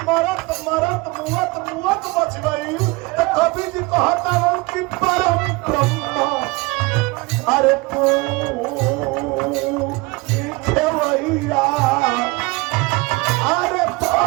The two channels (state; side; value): quieter; left; 25.0 dB